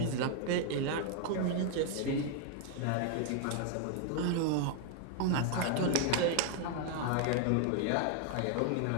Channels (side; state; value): both; different; correlation 0.00